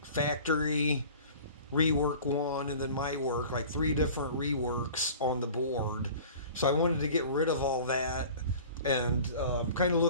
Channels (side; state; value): both; inverted; correlation -0.43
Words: factory rework one, and then my work, like three different reworks on the board. So I wanted to get rid of all that, and kind of